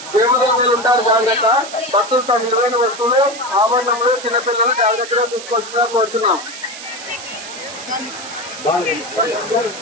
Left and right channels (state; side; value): noise; right; hiss, 12 dB below the sound